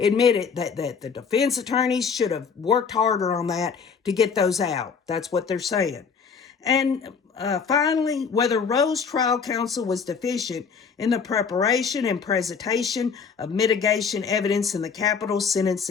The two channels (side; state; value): right; quieter; 6.0 dB